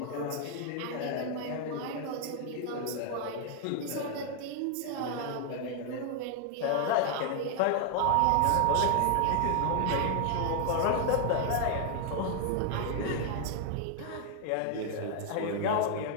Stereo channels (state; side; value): different; both; correlation 0.00